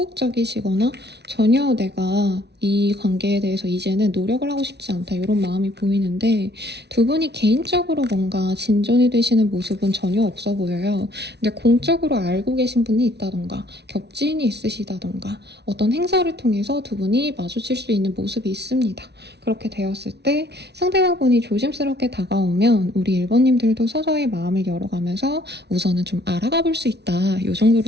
전혀 내가 이 관계에 대해서 이제는 노력을 하고 싶지 않다 이런 마음이 보이는데 두 분이 개인적으로 뭔가 진전이 되시는 모습은 전혀 없어 보여요. 근데 공적으로 알고 계신 분이 있다던가 겹지인이 있으시다던가 어떤 행사를 통해서 두 분이 마주칠 수 있는 모습이 있습니다. 그렇게 되었을 때 상대방분이 조심스럽게 다가오면 우리 1번님들도 서서히 마음을 열어가면서 우선은 좀 알아가 볼 수 있다. 이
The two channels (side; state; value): left; late; 0.49 ms